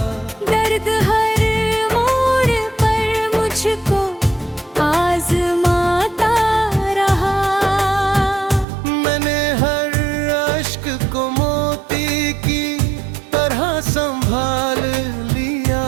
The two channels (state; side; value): drops out; left; at 8.7 s